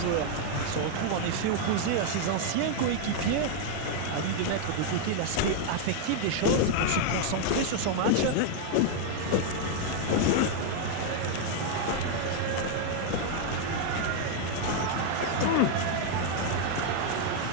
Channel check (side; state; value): both; different; correlation 0.00